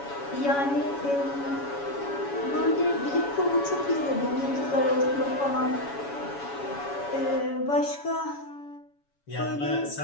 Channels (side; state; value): right; late; 7.1 ms